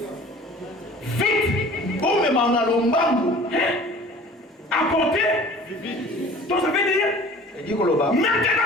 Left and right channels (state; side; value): normal; both; correlation 0.46